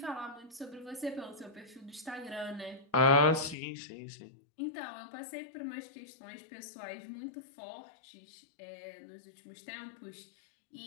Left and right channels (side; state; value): right; drops out; at 3.6 s